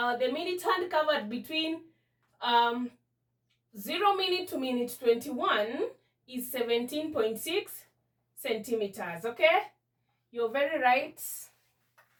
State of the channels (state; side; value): identical; both; correlation 1.00